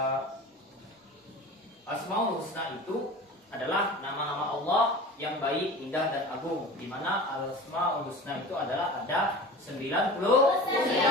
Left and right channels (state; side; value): normal; both; correlation 0.36